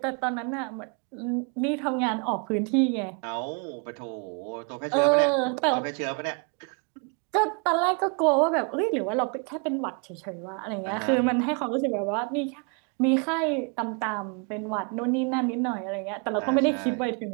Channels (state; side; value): quieter; left; 36.5 dB